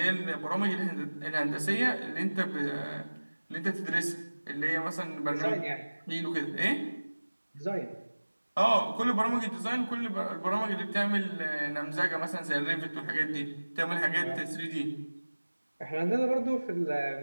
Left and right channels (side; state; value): both; inverted; correlation -1.00